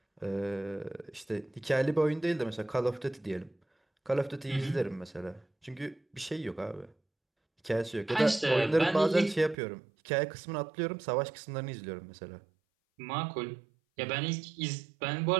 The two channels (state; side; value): drops out; left; at 9.6 s